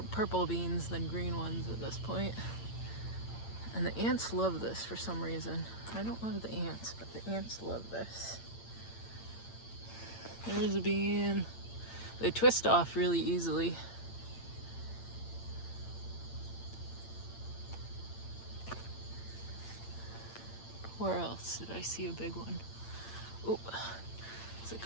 purple beans than green ones at this point. And the ants love this for some reason. I don't love the ants, but the ants love this. There's a bean. They twist off really easily. Where else did I see a big one? Oh, there's a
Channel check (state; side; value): late; right; 8.8 ms